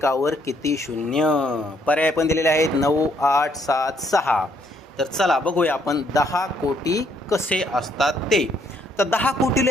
किती शून्य? पर्याय पण दिलेले आहेत 9, 8, 7, 6. तर चला बघूया आपण 10 कोटी कसे असतात ते. तर 10 कोटी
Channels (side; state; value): both; normal; correlation 0.69